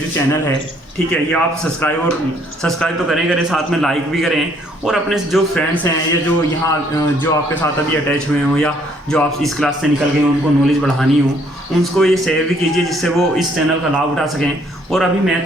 चैनल है, ठीक है, ये आप सब्सक्राइब तो करें साथ में लाइक भी करें, और अपने जो फ्रेंड्स हैं या जो यहाँ जो आपके साथ अभी अटैच हुए हों या जो आप इस क्लास से निकल गए हो उनको नॉलेज बढ़ानी हो, उनको ये शेयर भी कीजिए जिससे वो इस चैनल का लाभ उठा सकें। और अभी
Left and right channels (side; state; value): both; normal; correlation 0.65